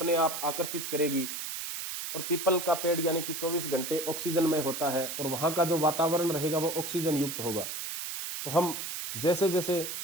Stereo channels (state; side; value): noise; right; hiss, 5 dB below the sound